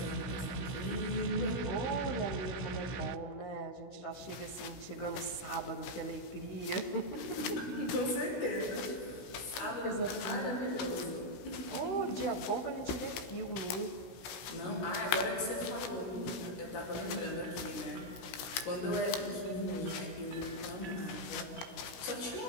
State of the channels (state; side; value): late; right; 16 ms